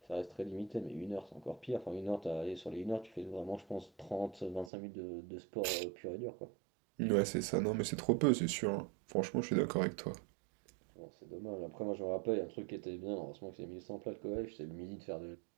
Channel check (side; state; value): left; drops out; at 4.7 s